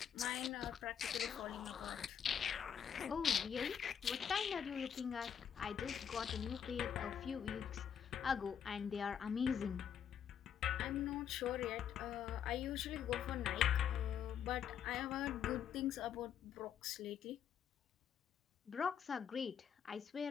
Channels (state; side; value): quieter; right; 8.3 dB